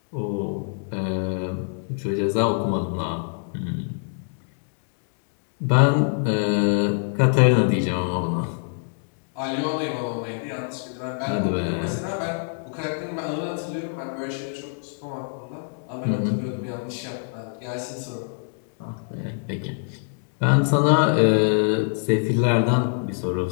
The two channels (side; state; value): right; silent; digital silence